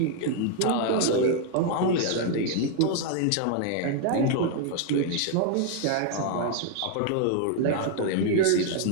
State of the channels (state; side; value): different; both; correlation 0.00